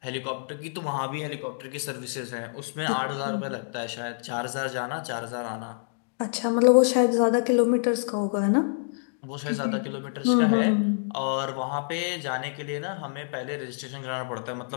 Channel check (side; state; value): right; silent; digital silence